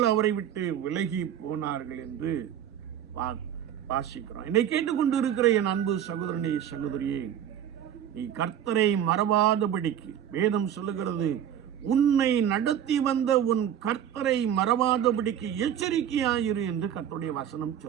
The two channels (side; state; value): left; quieter; 9.8 dB